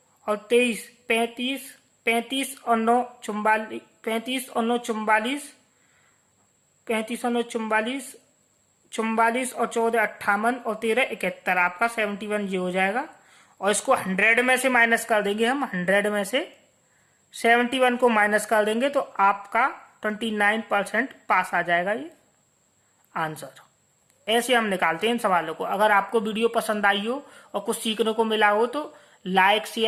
और 23 35, 35 और 9 44, 35 और 9 44, 35 और 9 44, 44 और 14 58 और 13 71, आपका 71 ये हो जाएगा। और इसको 100 में से माइनस कर देंगे हम, 100 में से 71 को माइनस कर देंगे तो आपका 29% पास आ जाएगा ये आंसर। ऐसे हम निकालते हैं इन सवालों को। अगर आपको वीडियो पसंद आई हो और कुछ सीखने को मिला हो तो लाइक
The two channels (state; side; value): identical; both; correlation 1.00